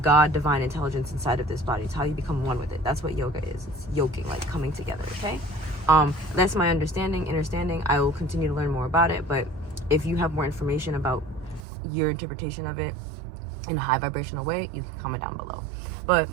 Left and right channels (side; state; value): left; drops out; at 11.6 s